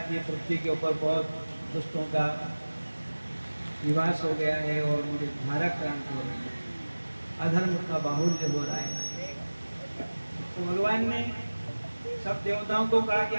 ये पृथ्वी के ऊपर बहुत दुष्टों का निवास हो गया है और मुझे धारा क्रांत हो रही है, अधर्म का बाहुल्य हो रहा है। तो भगवान ने सब देवताओं को कहा कि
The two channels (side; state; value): both; inverted; correlation -1.00